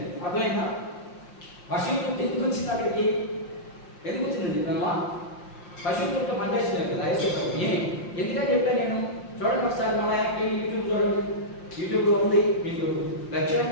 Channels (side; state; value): right; late; 5.7 ms